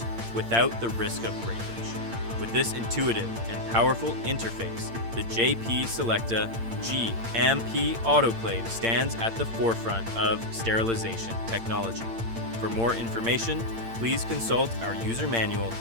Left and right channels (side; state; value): left; late; 8.8 ms